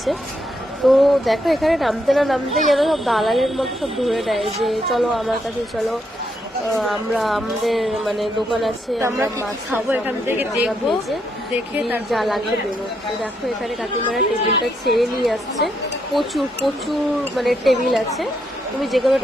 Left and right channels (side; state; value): both; normal; correlation 0.78